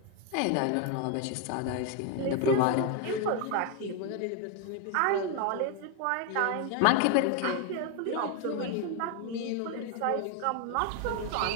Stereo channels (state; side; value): different; both; correlation 0.01